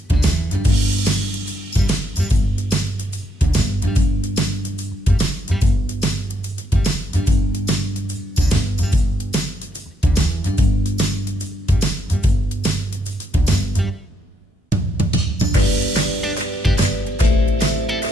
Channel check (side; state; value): both; normal; correlation 0.75